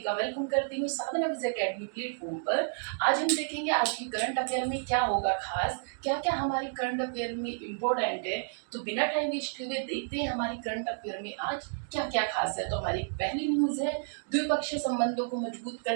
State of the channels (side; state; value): left; silent; digital silence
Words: का वेलकम करती हूँ साधना विजय अकेडमी प्लेटफॉर्म पर। आज हम देखेंगे आज की करंट अफेयर में क्या होगा खास, क्या क्या हमारी करंट अफेयर में इम्पोर्टेंट है। तो बिना टाइम वेस्ट हुए देखते हैं हमारी करंट अफेयर में आज क्या क्या खास है। तो हमारी पहली न्यूज है, द्विपक्षीय संबंधों को मजबूत